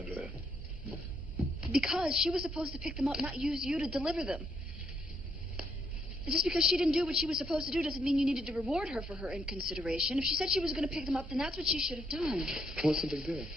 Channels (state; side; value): normal; both; correlation 0.75